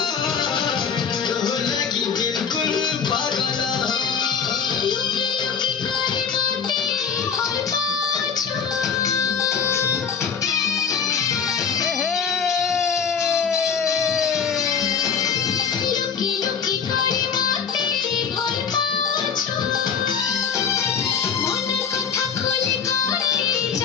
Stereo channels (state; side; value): quieter; right; 6.6 dB